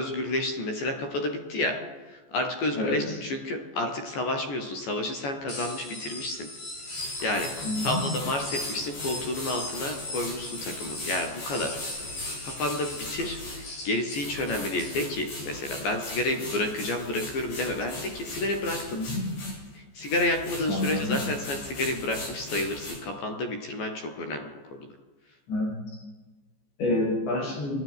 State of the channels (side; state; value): right; late; 14 ms